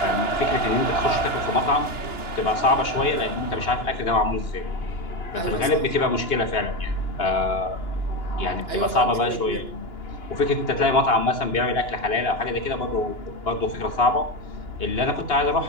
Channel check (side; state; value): right; late; 2.9 ms